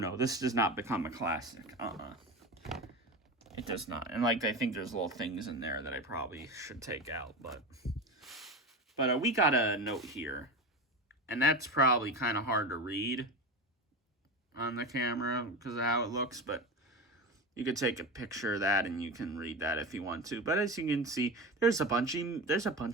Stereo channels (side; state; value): both; normal; correlation 0.24